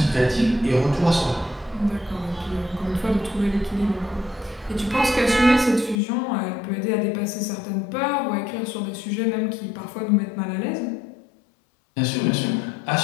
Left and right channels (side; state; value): right; drops out; at 6.0 s